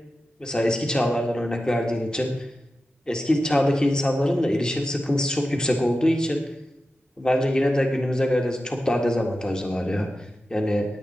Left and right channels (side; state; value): both; normal; correlation 0.92